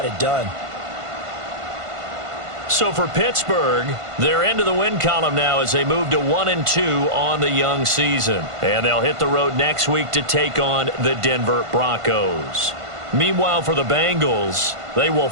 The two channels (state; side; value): late; left; 1.5 ms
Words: it done. So for Pittsburgh, they're into the win column now as they move to 1-2 on the young season. And they'll hit the road next week to take on the Denver Broncos. Meanwhile, for the Bengals, they will